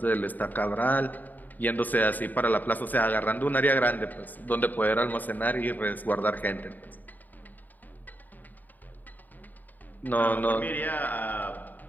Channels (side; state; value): right; late; 0.084 ms